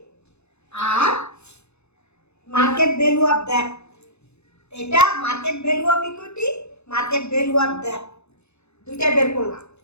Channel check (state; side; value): late; right; 0.81 ms